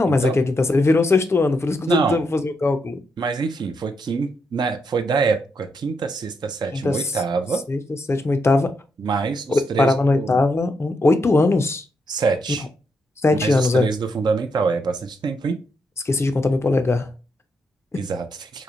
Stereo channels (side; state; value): both; normal; correlation 0.80